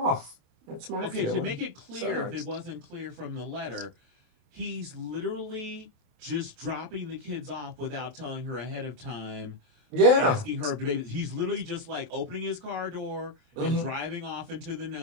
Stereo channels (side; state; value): left; late; 28 ms